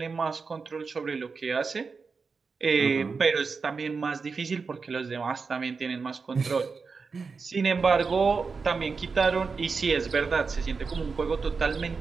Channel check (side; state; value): left; quieter; 4.9 dB